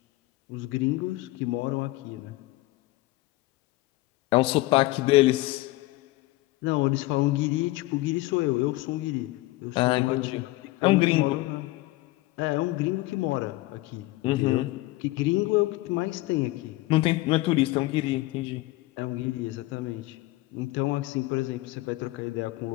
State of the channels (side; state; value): right; quieter; 19.4 dB